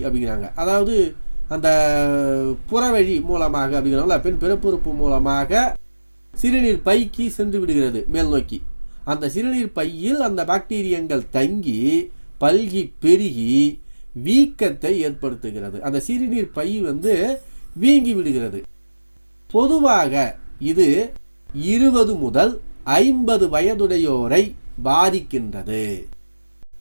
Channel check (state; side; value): inverted; both; correlation -1.00